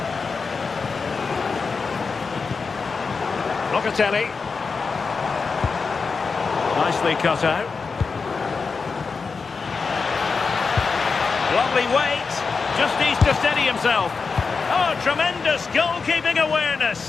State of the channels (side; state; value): right; quieter; 4.8 dB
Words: Locatelli. Nicely cut out. Lovely weight. Just needs to steady himself. Oh, tremendous goalkeeping